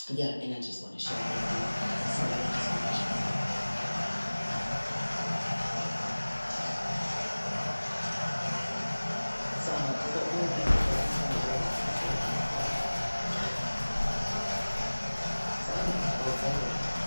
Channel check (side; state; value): both; inverted; correlation -1.00